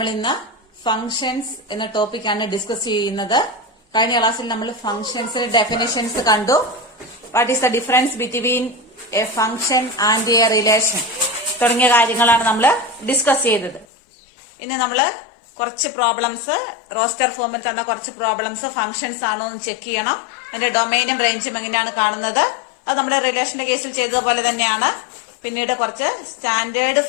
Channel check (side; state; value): right; drops out; at 13.9 s